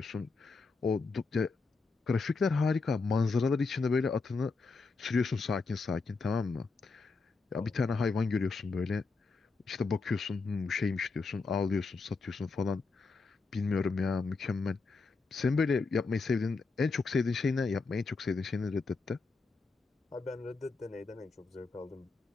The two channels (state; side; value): quieter; right; 4.2 dB